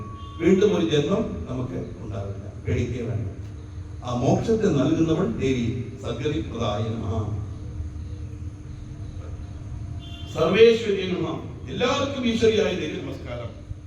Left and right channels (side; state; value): both; identical; correlation 1.00